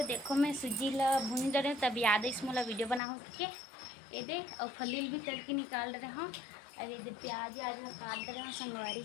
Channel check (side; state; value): right; drops out; at 3.0 s